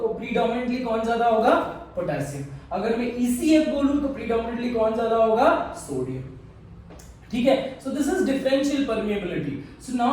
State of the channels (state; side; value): identical; both; correlation 1.00